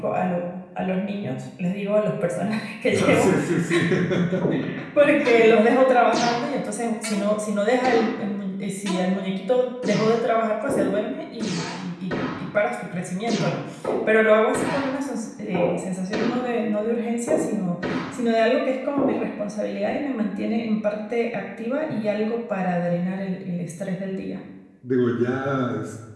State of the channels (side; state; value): both; identical; correlation 1.00